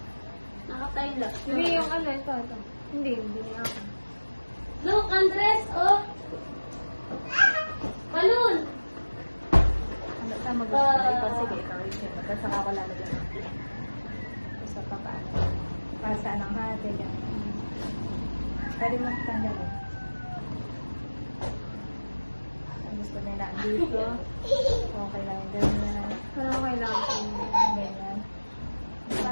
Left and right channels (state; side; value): inverted; both; correlation -1.00